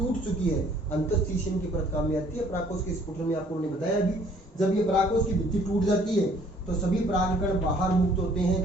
चुकी है, अंतःस्थिशियन की परत काम में आती है। परागकोश के स्फुटन में आपको मैंने बताया अभी, जब ये परागकोश की भित्ति टूट जाती है तो सभी परागकण बाहर मुक्त होते हैं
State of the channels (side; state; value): both; normal; correlation 0.59